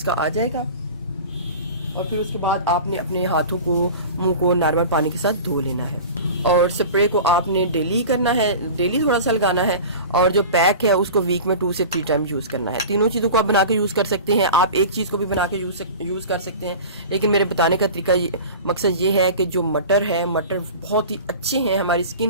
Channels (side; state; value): both; inverted; correlation -0.35